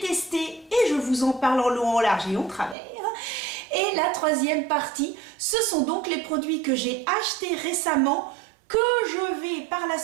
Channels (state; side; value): drops out; left; at 2.8 s